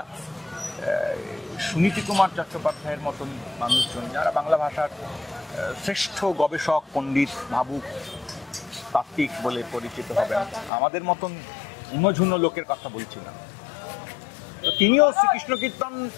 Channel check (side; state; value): right; drops out; at 10.7 s